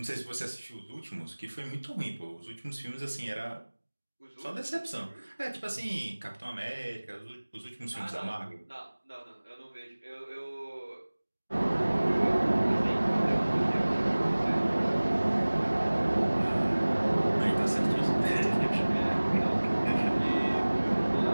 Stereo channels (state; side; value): inverted; both; correlation -1.00